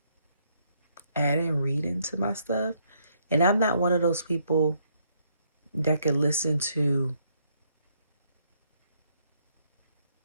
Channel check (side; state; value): both; inverted; correlation -0.72